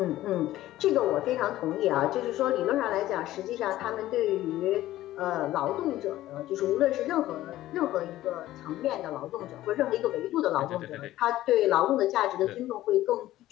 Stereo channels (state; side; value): quieter; right; 14.9 dB